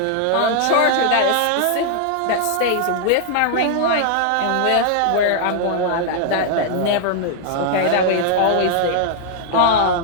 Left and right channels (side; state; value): both; different; correlation -0.01